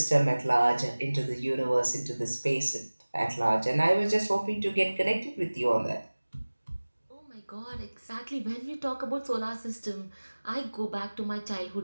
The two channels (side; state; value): both; inverted; correlation -1.00